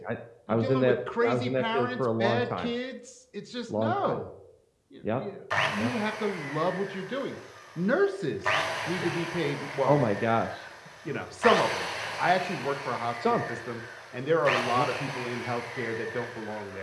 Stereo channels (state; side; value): identical; both; correlation 1.00